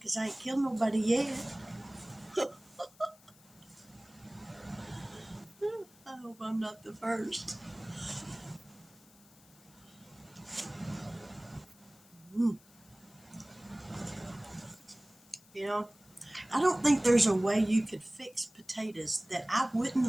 I ain't killed nobody yet. I hope I'm not the first. You know, I don't think there's a way you could fix potatoes that I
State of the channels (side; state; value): left; noise; hiss, 26 dB below the sound